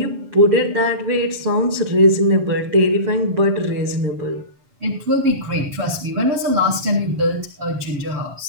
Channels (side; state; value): left; late; 7.2 ms